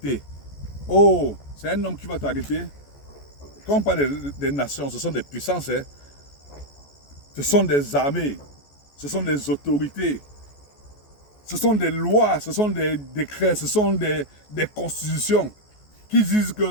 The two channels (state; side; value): late; right; 14 ms